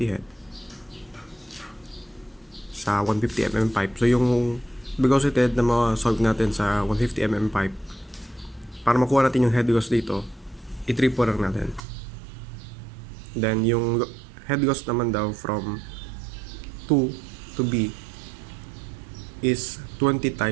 head sa 150 mm pipe. So, yung velocity head na ma-solve natin sa 150 mm pipe, para makuha natin yung head loss dito, i-triple lang natin. Then, yung head loss naman daw from 2 to B is 20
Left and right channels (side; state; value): left; drops out; at 11.8 s